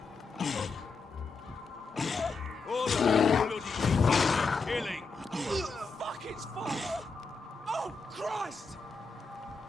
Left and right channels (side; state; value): right; quieter; 4.3 dB